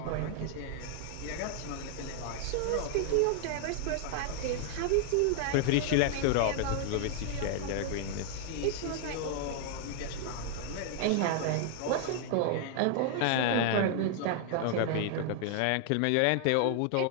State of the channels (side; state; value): both; different; correlation 0.00